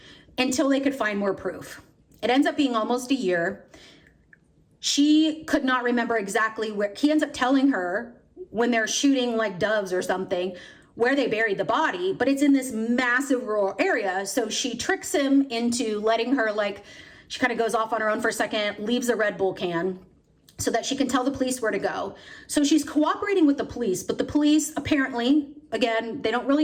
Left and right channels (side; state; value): both; identical; correlation 1.00